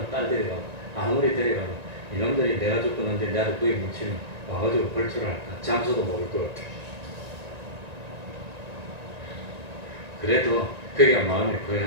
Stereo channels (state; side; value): late; left; 1.9 ms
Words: 딸 데려가고, 아무리 데려가고 이놈들이 내가 죽었는데 나도 거기 묻히면 와가지고 벌초를 할까? 장소도 모를 것 같아. 그래도 거기가 마음의